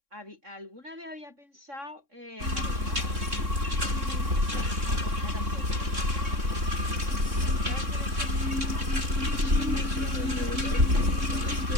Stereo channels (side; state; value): left; late; 3.6 ms